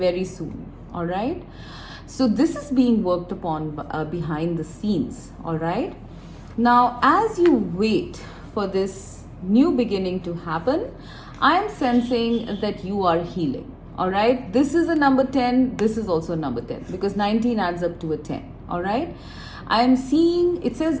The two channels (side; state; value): both; identical; correlation 1.00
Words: soon. All right, so this is being worked upon behind the scenes. All right, now as you wait for this new beginning to happen, I am sensing that you are healing. All right, this is a number 10, this is also a number 10, because 19 adds up to a 10. All right, I am seeing, it says